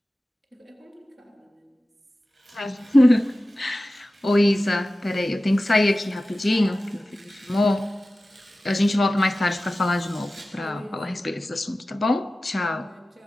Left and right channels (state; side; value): normal; both; correlation 0.96